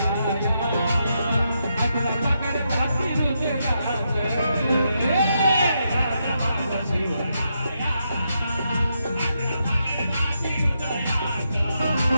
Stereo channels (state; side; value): inverted; both; correlation -0.82